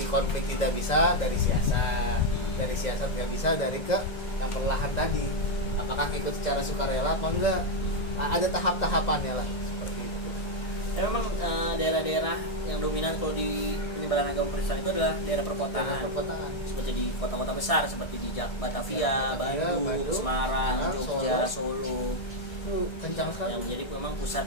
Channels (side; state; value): right; late; 1.6 ms